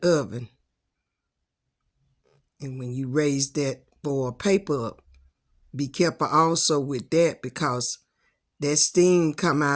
oven. And when you raise that foil paper up, be careful also with that because that steam come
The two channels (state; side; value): identical; both; correlation 1.00